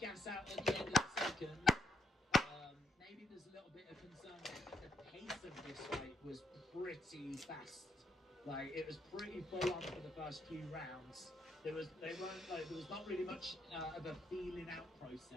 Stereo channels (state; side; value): normal; both; correlation 0.76